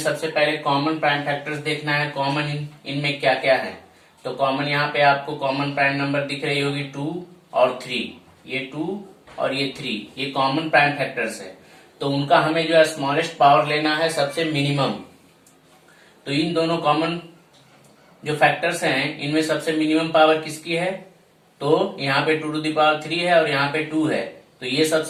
पहले कॉमन प्राइम फैक्टर्स देखना है, कॉमन इनमें क्या क्या है। तो कॉमन यहाँ पे आपको कॉमन प्राइम नंबर दिख रही होगी 2 और 3, ये 2 और ये 3, ये कॉमन प्राइम फैक्टर्स है। तो उनका हमें जो है स्मॉलेस्ट पावर लेना है, सबसे मिनिमम। तो इन दोनों कॉमन जो फैक्टर्स हैं इनमें सबसे मिनिमम पावर किसकी है? तो यहाँ पे 2 टू द पावर 3 है और यहाँ पे 2 है, तो ये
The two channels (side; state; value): both; identical; correlation 1.00